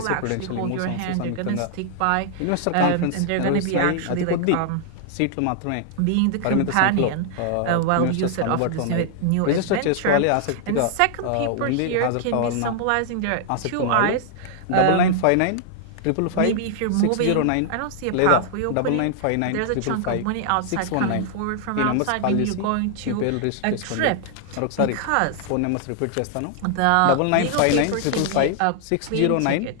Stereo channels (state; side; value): different; both; correlation -0.01